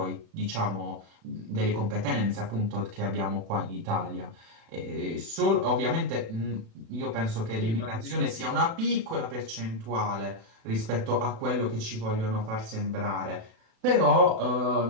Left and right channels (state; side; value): late; left; 36 ms